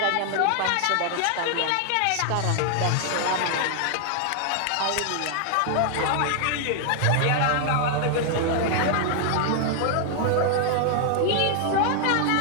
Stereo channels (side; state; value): both; different; correlation 0.00